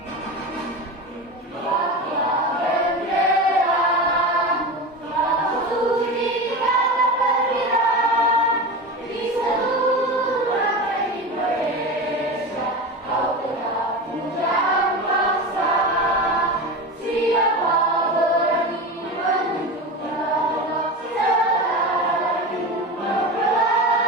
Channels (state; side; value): normal; both; correlation 0.25